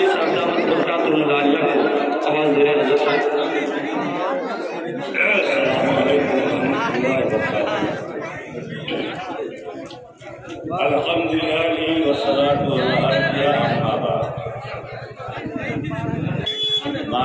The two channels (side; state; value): both; identical; correlation 1.00